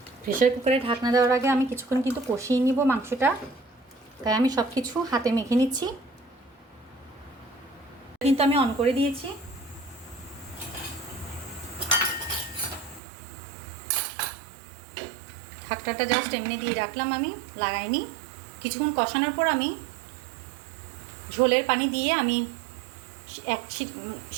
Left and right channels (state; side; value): drops out; left; at 13.0 s